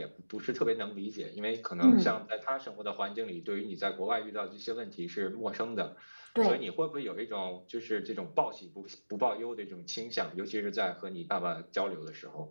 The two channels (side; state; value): both; inverted; correlation -1.00